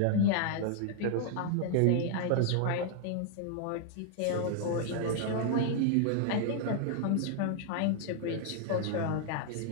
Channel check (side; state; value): both; different; correlation 0.00